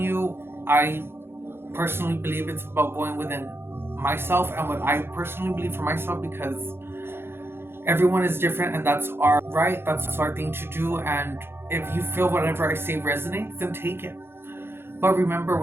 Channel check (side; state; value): left; late; 0.11 ms